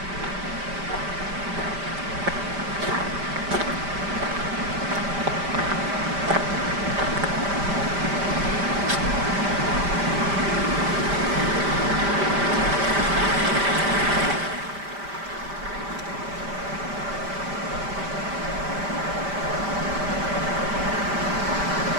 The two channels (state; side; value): late; left; 5.1 ms